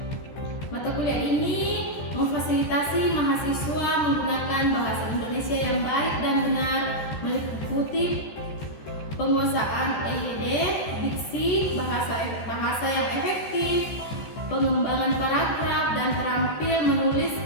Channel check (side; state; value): right; late; 14 ms